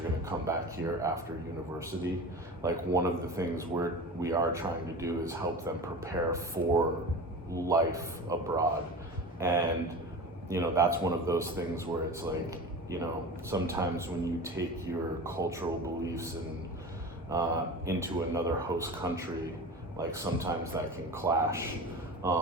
to come back here after university, like one of the things we are trying to do is help them prepare for life abroad. And you know, that's one of those things where it's like, you know, sometimes when you take your cultural beliefs and into another host country, like sometimes that can clash.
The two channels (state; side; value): normal; both; correlation 0.32